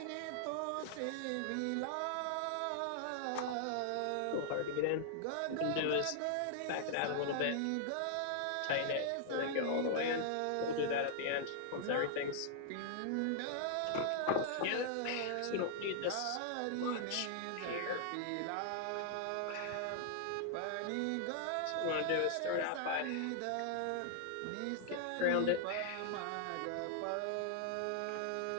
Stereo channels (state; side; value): different; both; correlation -0.01